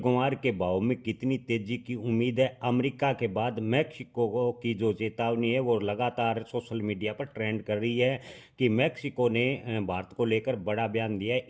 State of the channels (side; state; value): both; identical; correlation 1.00